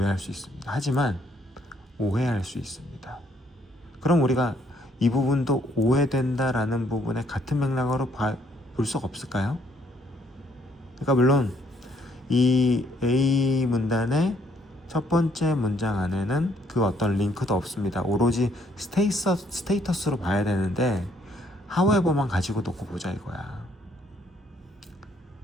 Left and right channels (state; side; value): normal; both; correlation 0.68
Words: 수 있습니다. 하지만 오해할 수 있습니다. 그럼 우리가 이 부분도 오해된다라는 부분에 같은 맥락으로 볼 수가 없을까요? 그러니까 물론 이 A 문단의 첫 번째 문장 안에는 그 어떤 링크도 없습니다. 오로지 스테이터스로 봐야 되는데 however만 가지고 놓고 보자 이거야.